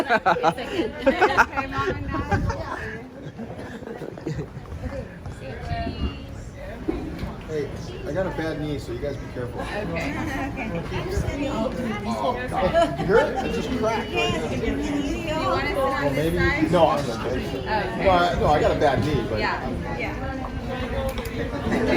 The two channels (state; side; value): identical; both; correlation 1.00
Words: Hey, I got a bad knee, so you guys be careful. Okay. Oh, God. You hear it? It just cracked. Do you want to sit on Well, this maybe. side? No, I'm okay. No, I got a bad knee, but. Yeah.